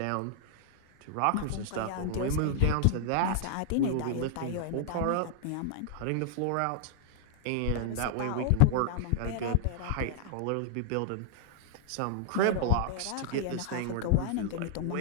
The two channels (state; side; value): different; both; correlation -0.01